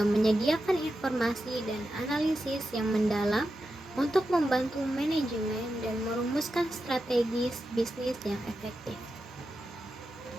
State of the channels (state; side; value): normal; both; correlation 0.89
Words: menyediakan informasi dan analisis yang mendalam untuk membantu manajemen dan merumuskan strategi bisnis yang efektif.